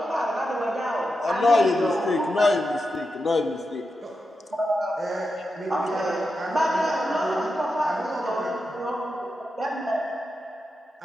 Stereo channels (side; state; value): both; normal; correlation 0.88